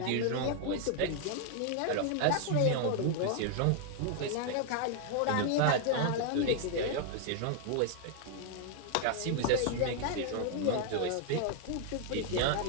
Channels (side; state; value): both; different; correlation 0.00